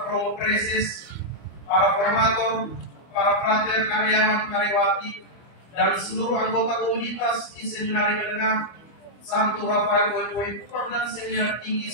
Romo Preses, para formator, para frater karyawan karyawati, dan seluruh anggota komunitas di Seminari Menengah Santo Rafael Boy Kupang dan Seminar Tinggi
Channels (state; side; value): late; right; 25 ms